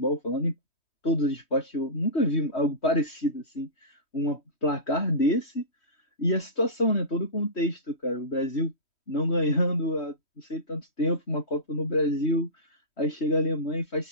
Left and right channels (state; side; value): late; right; 3.1 ms